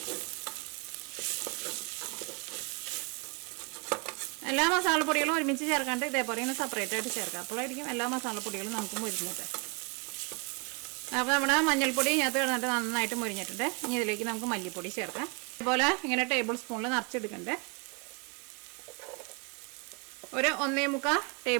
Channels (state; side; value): quieter; left; 33.0 dB